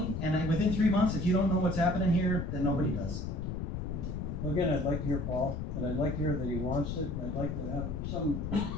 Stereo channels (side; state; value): left; noise; rumble, 4 dB below the sound